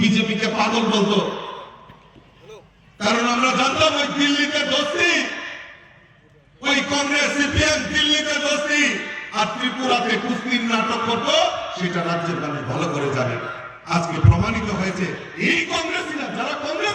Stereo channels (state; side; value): identical; both; correlation 1.00